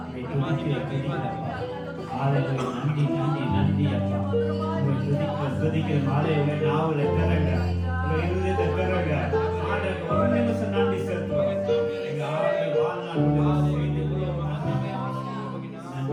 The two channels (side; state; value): both; identical; correlation 1.00